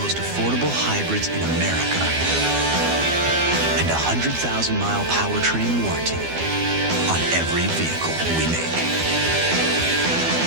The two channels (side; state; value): left; late; 12 ms